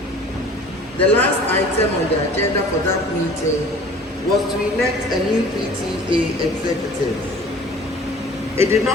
The last item on the agenda for that meeting was to elect a new PTA executive. It did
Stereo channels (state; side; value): normal; both; correlation 0.47